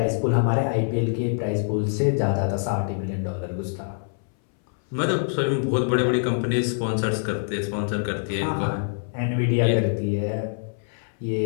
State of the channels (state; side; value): silent; right; 62 dB below the other